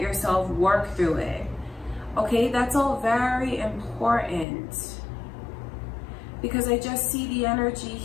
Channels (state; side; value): drops out; right; at 4.5 s